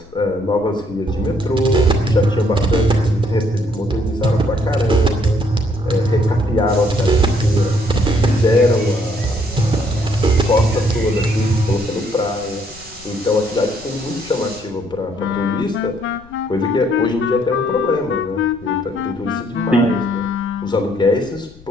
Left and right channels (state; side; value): noise; left; rumble, 24 dB below the sound